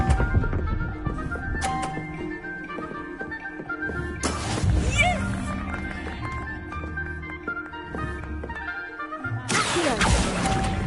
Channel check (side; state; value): both; identical; correlation 1.00